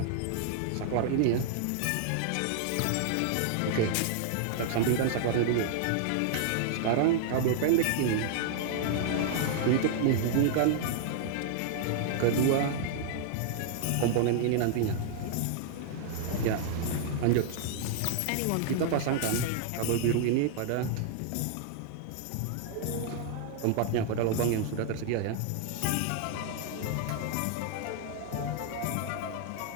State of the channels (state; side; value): different; both; correlation -0.01